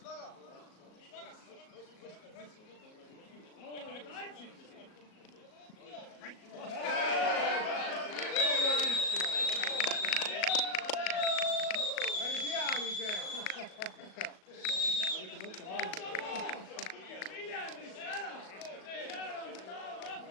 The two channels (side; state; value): right; late; 37 ms